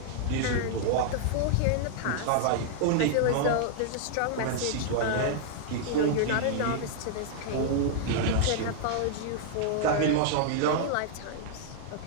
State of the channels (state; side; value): different; both; correlation -0.01